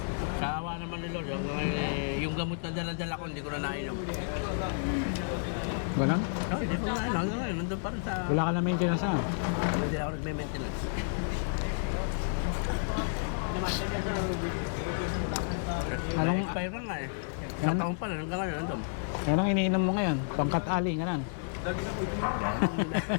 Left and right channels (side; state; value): right; silent; digital silence